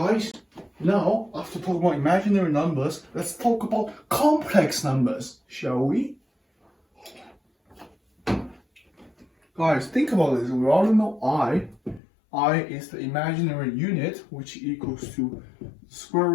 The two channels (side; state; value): right; drops out; at 12.0 s